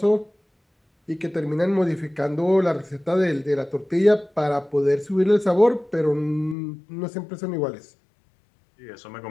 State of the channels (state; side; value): drops out; right; at 6.6 s